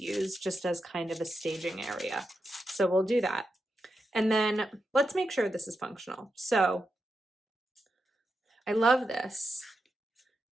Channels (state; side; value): normal; both; correlation 0.87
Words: use just as kind of a staging area. So we'll do that. And then let's make sure this is functional. So I love this.